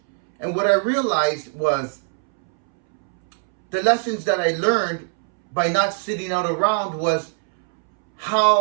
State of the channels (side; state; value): left; silent; 65 dB below the other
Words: And what I realized was the lessons that I learned by not sitting out around was